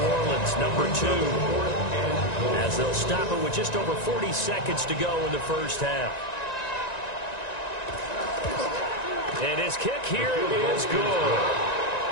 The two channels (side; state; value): right; late; 1.9 ms